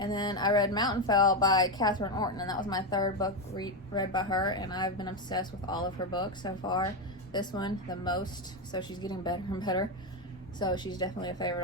then I read Mountainfell by Catherine Orton, and that was my 3rd book read by her, and I've been obsessed with all of her books so far. This one, the most, so she's getting better and better. So she's definitely a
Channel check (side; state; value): both; normal; correlation 0.09